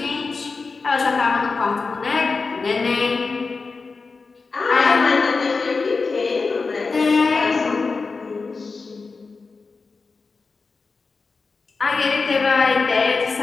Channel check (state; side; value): quieter; right; 4.3 dB